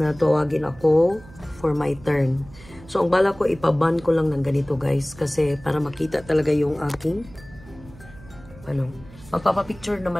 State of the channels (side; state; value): right; noise; hum, 20 dB below the sound